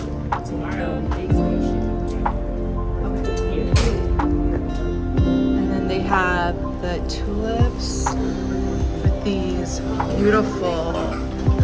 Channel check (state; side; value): identical; both; correlation 1.00